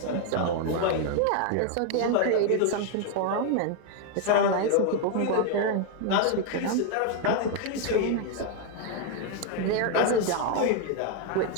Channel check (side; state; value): both; different; correlation 0.01